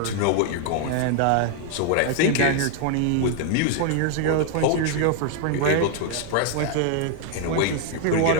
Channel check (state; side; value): different; both; correlation 0.00